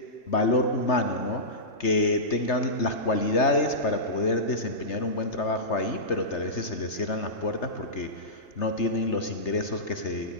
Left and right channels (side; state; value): right; late; 3.3 ms